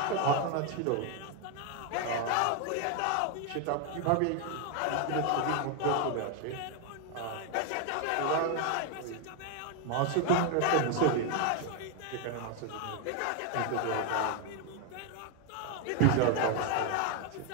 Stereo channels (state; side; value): different; both; correlation 0.01